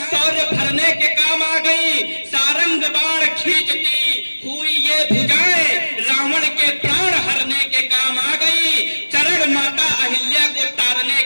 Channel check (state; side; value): inverted; both; correlation -1.00